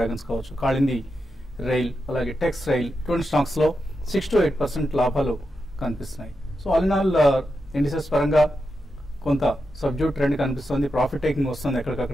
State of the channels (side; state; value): both; normal; correlation 0.88